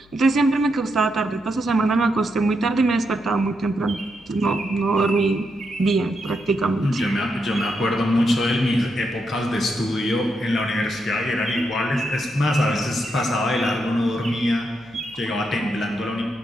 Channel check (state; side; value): noise; left; hum, 28 dB below the sound